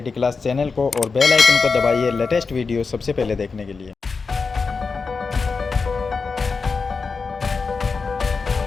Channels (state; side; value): quieter; right; 4.7 dB